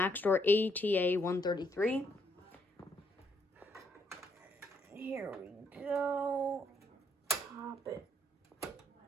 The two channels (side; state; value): both; normal; correlation 0.72